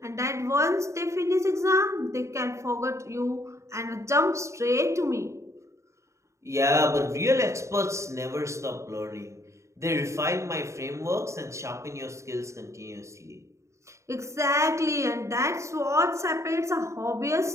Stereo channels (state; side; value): late; left; 0.14 ms